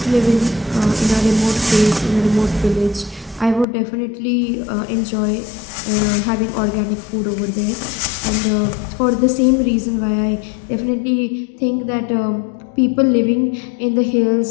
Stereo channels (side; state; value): right; drops out; at 3.7 s